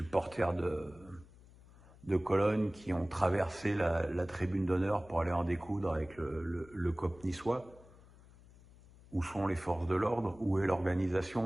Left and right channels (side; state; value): left; noise; hum, 23 dB below the sound